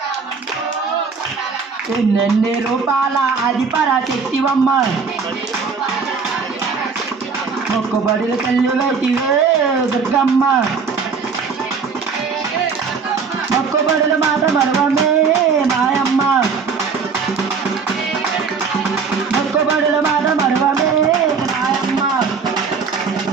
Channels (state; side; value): quieter; left; 5.4 dB